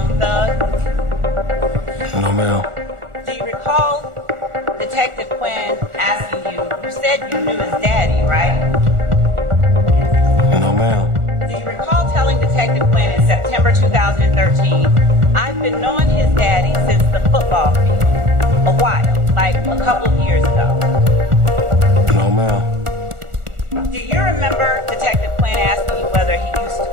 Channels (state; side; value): late; left; 1.4 ms